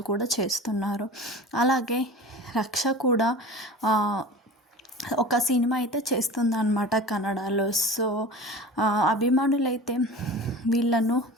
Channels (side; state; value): both; normal; correlation 0.36